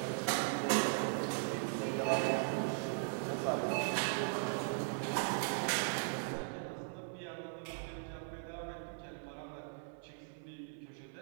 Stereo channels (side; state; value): left; silent; 52 dB below the other